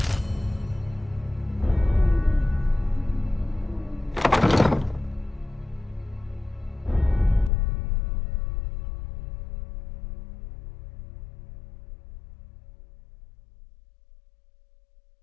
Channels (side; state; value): right; drops out; at 7.5 s